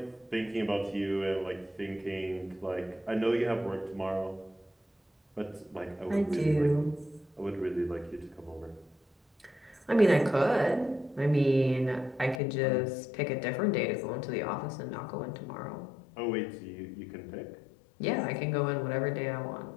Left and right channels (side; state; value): right; drops out; at 12.4 s